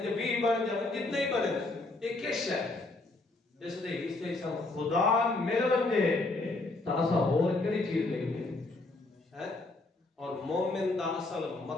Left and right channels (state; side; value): quieter; right; 3.1 dB